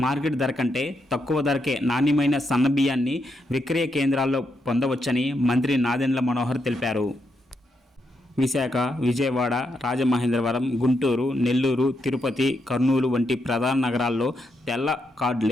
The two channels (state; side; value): normal; both; correlation 0.81